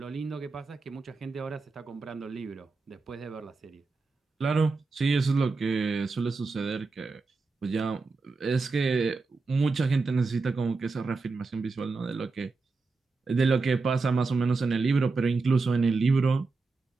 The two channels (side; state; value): left; quieter; 4.1 dB